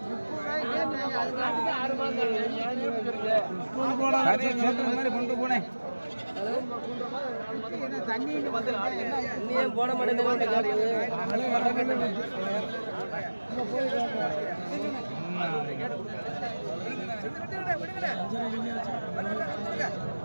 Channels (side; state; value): both; inverted; correlation -1.00